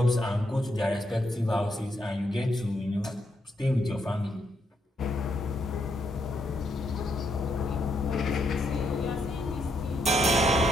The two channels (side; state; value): both; normal; correlation 0.77